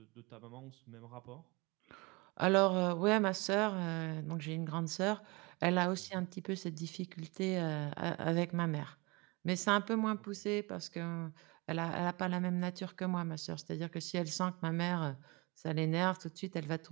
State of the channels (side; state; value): left; quieter; 26.7 dB